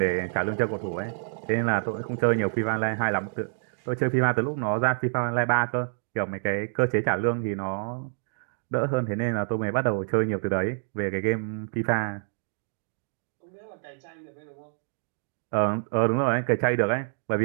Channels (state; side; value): silent; left; digital silence